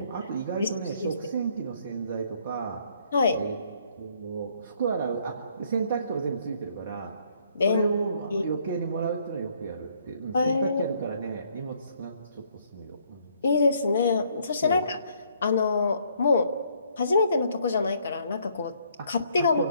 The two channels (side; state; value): both; inverted; correlation -0.67